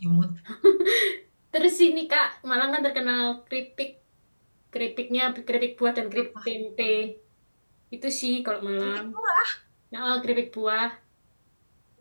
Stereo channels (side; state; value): both; inverted; correlation -1.00